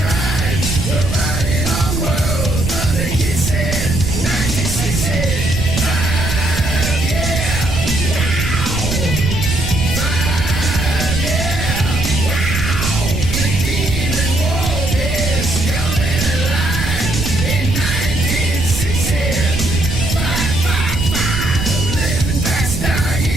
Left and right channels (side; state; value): right; noise; rumble, 2 dB below the sound